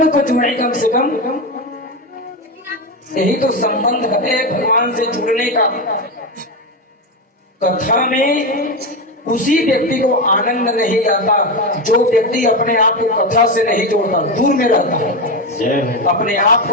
को जोड़े कम से कम। यही तो संबंध है भगवान से जुड़ने का। कथा में उसी व्यक्ति को आनंद नहीं आता जो व्यक्ति अपने आप को कथा से नहीं जोड़ता, दूर में रहता है। अपने आप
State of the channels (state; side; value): normal; both; correlation 0.14